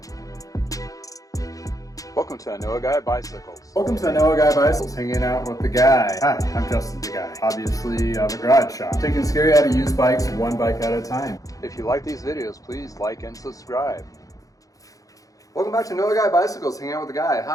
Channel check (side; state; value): right; late; 0.17 ms